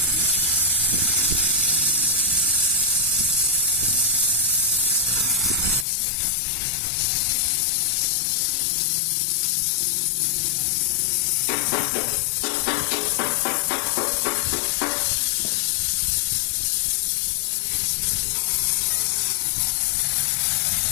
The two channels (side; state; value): right; drops out; at 5.9 s